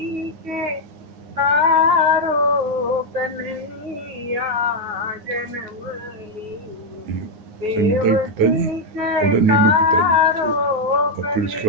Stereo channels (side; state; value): left; late; 9.4 ms